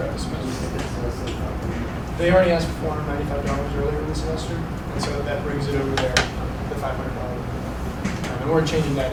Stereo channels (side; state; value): both; identical; correlation 1.00